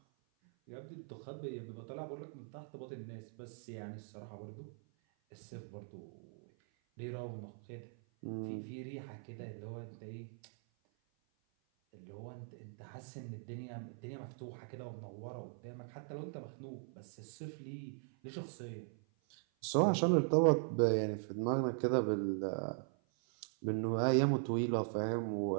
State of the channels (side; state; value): left; silent; 51 dB below the other